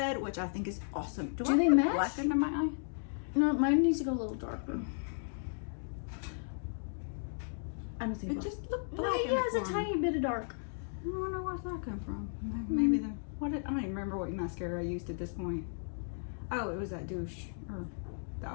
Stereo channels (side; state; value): right; silent; digital silence